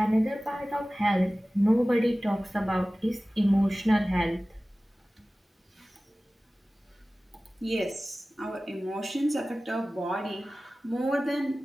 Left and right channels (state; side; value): normal; both; correlation 0.97